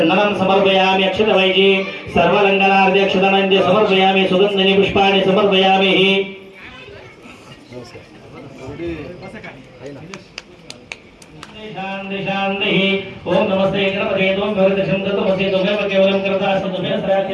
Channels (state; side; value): identical; both; correlation 1.00